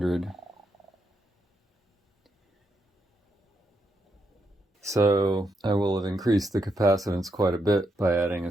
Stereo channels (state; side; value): normal; both; correlation 0.80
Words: So I will have increased the capacitance quite a bit by adding